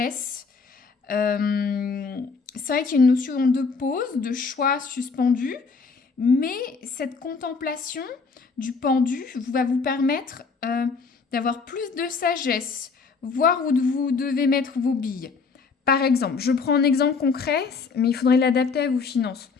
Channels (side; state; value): right; quieter; 4.9 dB